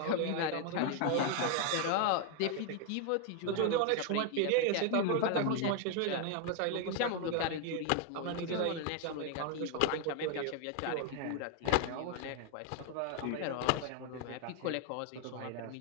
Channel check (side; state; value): both; different; correlation 0.00